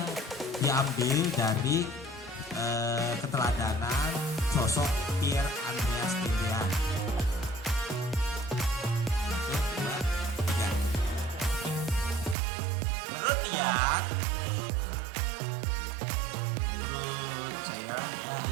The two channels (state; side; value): drops out; left; at 12.4 s